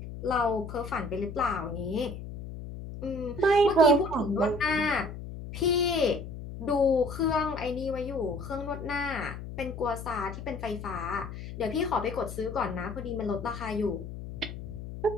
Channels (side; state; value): left; noise; hum, 10 dB below the sound